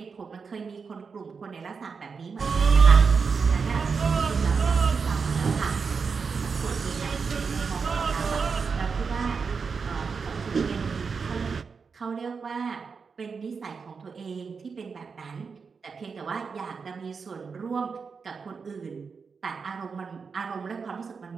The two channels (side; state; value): left; quieter; 5.4 dB